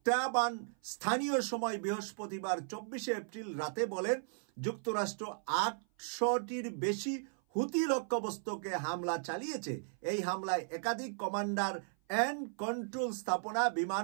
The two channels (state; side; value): silent; left; 54 dB below the other